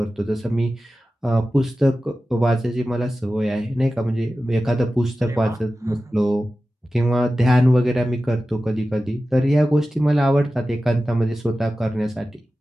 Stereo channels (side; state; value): both; normal; correlation 0.94